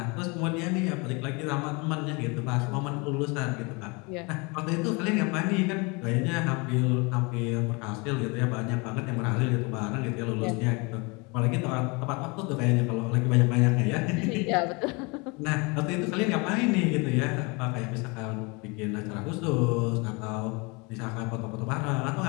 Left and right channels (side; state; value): right; quieter; 28.7 dB